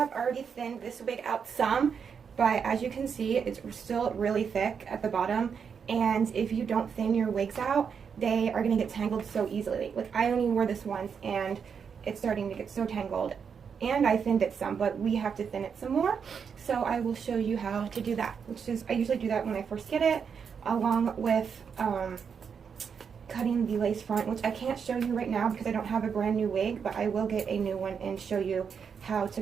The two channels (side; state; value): left; quieter; 6.6 dB